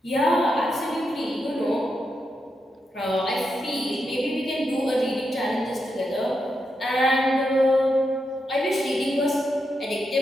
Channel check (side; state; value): both; normal; correlation 0.84